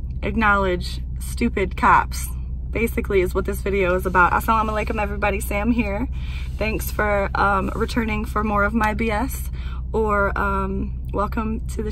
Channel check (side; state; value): both; identical; correlation 1.00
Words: acknowledge stupid cops. Basically is what this video is about. Assalamu alaikum everybody, Sam here. Thanks for returning for more of my BS, or welcome to the